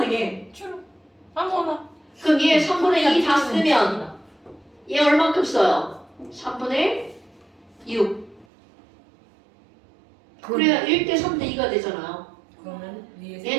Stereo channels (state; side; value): drops out; left; at 8.5 s